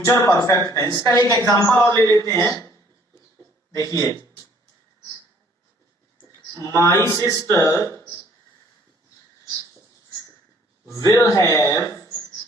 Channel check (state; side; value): normal; both; correlation 0.59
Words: परफेक्ट टेंस। इसका एक एग्जांपल और ले लेते हैं। देखिए, my sister will have